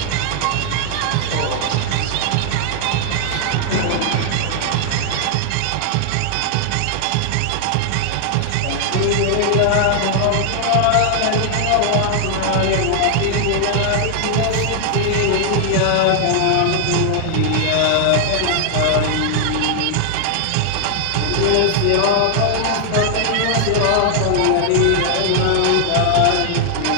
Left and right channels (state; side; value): different; both; correlation 0.00